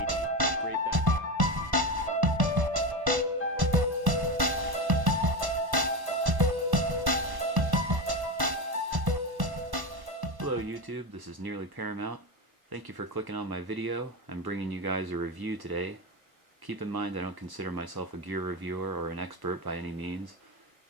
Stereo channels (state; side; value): late; left; 1.1 ms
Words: Great backpack. Hello YouTube, this is Nearly Paramount. Thank you for clicking on my video. I'm bringing you guys a review today. Keep in mind I don't consider myself a gear reviewer or an expert by any means.